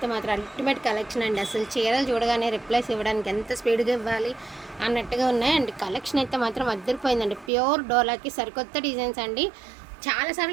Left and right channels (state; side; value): drops out; left; at 7.5 s